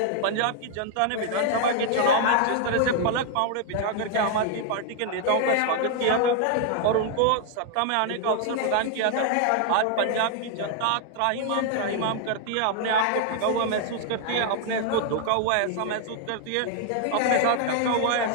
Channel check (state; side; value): different; both; correlation 0.00